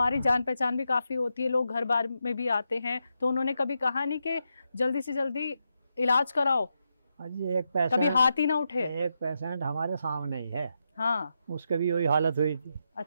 जान पहचान भी काफ़ी होती है, लोग घर बार में भी आते हैं, तो उन्होंने कभी कहा नहीं कि जल्दी से जल्दी इलाज कराओ? अजी एक पेशेंट, कभी हाथ ही ना उठे? एक पेशेंट हमारे सामने ही है, हाँ। उसके भी वही हालत हुई थी।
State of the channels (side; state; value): both; inverted; correlation -0.85